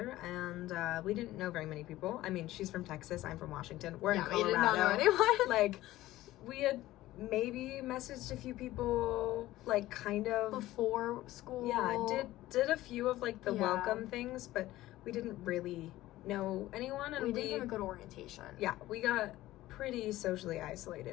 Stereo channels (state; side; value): quieter; right; 16.1 dB